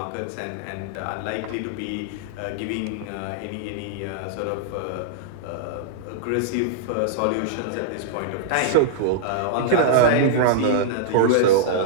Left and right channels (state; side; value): different; both; correlation -0.02